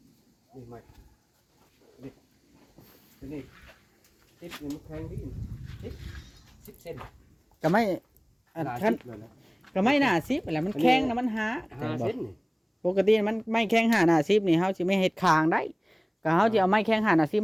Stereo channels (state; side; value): identical; both; correlation 1.00